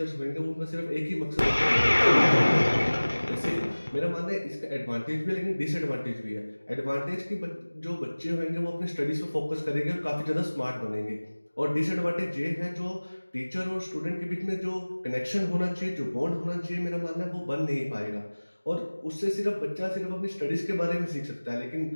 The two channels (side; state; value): both; inverted; correlation -1.00